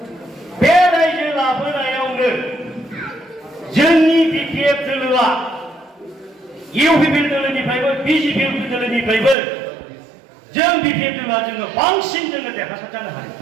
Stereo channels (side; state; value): left; drops out; at 9.3 s